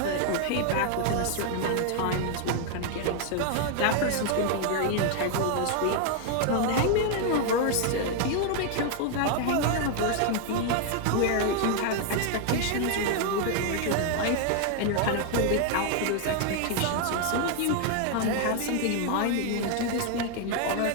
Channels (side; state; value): both; different; correlation 0.00